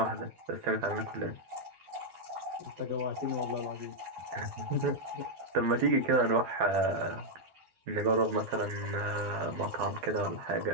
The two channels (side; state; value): left; late; 12 ms